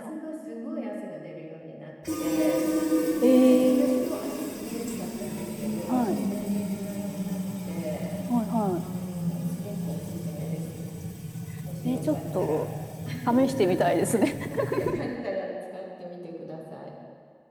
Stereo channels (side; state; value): both; identical; correlation 1.00